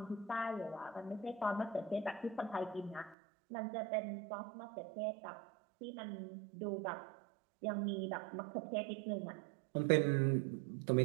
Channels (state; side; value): drops out; left; at 3.2 s